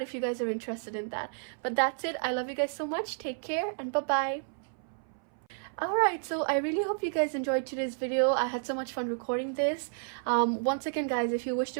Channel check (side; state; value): left; silent; 57 dB below the other